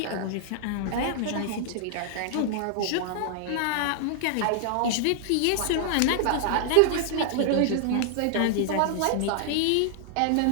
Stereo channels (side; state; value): both; different; correlation -0.01